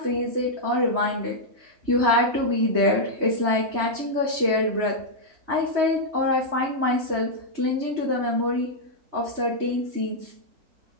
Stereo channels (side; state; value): left; late; 3.2 ms